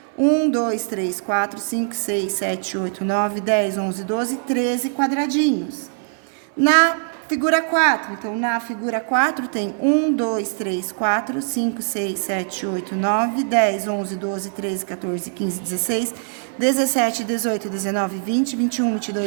1, 2, 3, 4, 5, 6, 7, 8, 9, 10, 11, 12, 13 quadradinhos. Na Figura 4, então na figura 4 tem 1, 2, 3, 4, 5, 6, 7, 8, 9, 10, 11, 12, 13, 14, 15, 16, 17, 18, 19, 20, 21,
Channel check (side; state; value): left; silent; digital silence